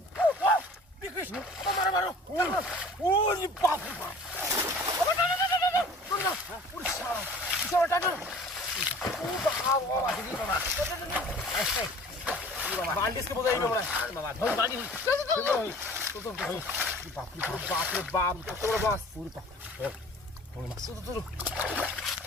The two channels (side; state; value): both; normal; correlation 0.46